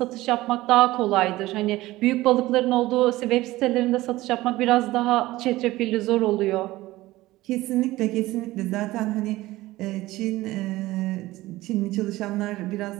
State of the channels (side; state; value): left; quieter; 17.7 dB